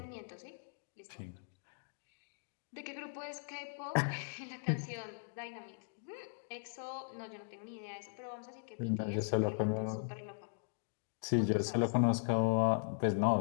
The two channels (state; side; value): silent; right; digital silence